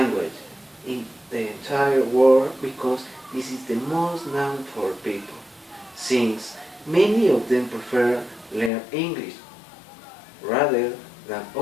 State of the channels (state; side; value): drops out; right; at 8.7 s